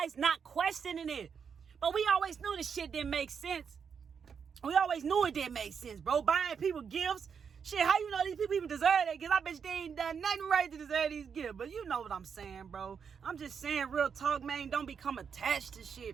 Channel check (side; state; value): left; quieter; 6.7 dB